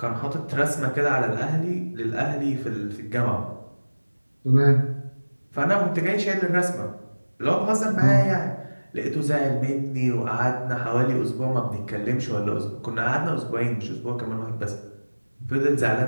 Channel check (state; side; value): inverted; both; correlation -1.00